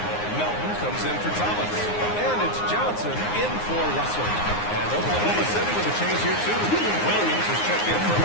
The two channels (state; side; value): late; right; 9.6 ms